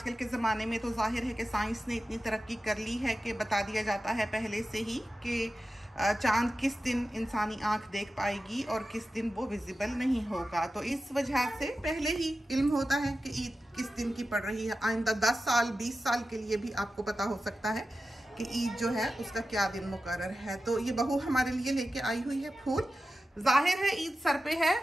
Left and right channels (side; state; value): both; normal; correlation 0.93